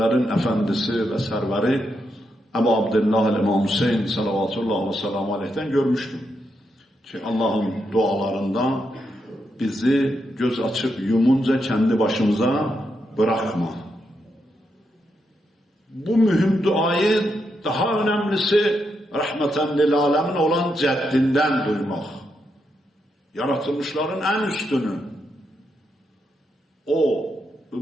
efendisi ve serveri Ebu Abdillah İmam Hüseyin salavatullah ve selamu aleyh'ten görmüştüm. Ki Allah'ın dualarında bizi göz açıp yumunca kendi başımıza bırakma. Bu mühim duayı daha önemlisi rahmeten lil alemin olan ceddinden duymak. Yaratılmışların en üstünü. O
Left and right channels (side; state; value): both; normal; correlation 0.82